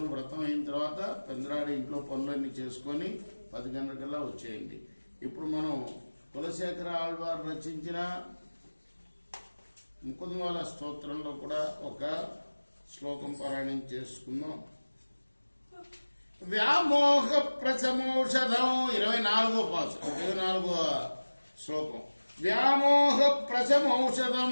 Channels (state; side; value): inverted; both; correlation -1.00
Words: వ్రతం అయిన తర్వాత పెందరాడి ఇంట్లో పనులన్నీ చేసుకొని 10 గంటలకల్లా వచ్చేయండి. ఇప్పుడు మనం కులశేఖర ఆళ్వారు రచించిన ముకుందమాల స్తోత్రంలో కూడా ఒక శ్లోకం పారాయణం చేసుకుందాం. వ్యామోహ ప్రశమౌషధం 24వ పాసు 24వ శ్లోకం. వ్యామోహ ప్రశమౌషధం